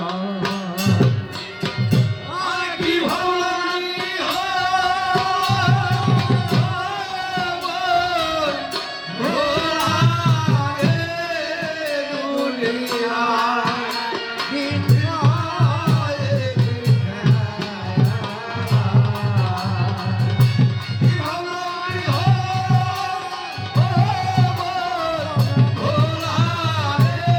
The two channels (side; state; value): both; identical; correlation 1.00